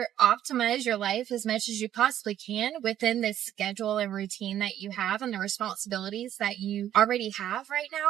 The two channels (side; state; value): left; quieter; 11.4 dB